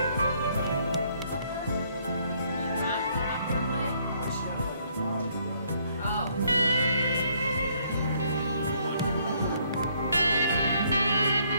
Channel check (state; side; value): inverted; both; correlation -0.67